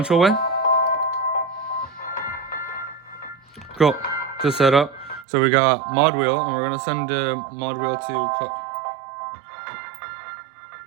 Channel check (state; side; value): drops out; left; at 5.2 s